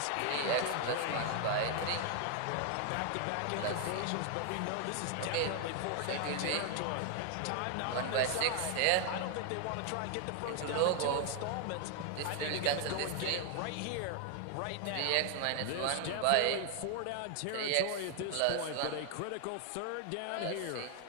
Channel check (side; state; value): both; different; correlation 0.00